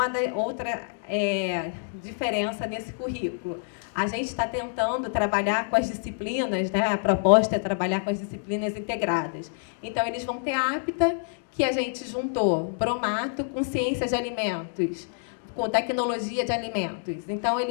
outra diferença nesse currículo. A gente está tentando trabalhar com as disciplinas, né? A proposta é trabalhar com as disciplinas integradas. Então, eles vão ter a APTA, que a gente juntou bromato com ciência de alimentos, com tecnologia de alimentos. Então,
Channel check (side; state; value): right; silent; digital silence